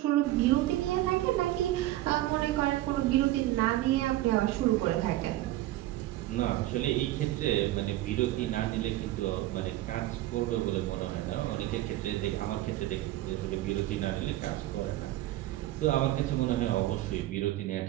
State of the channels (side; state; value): left; quieter; 15.7 dB